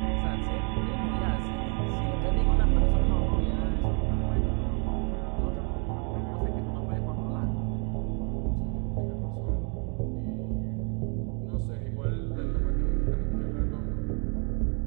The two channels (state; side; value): quieter; left; 37.7 dB